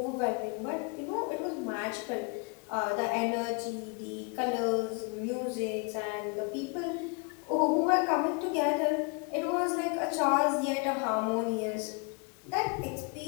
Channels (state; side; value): quieter; right; 32.1 dB